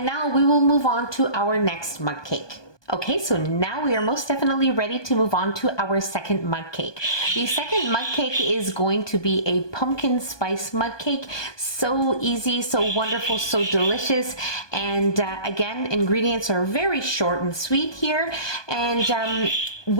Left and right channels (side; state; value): right; late; 1.2 ms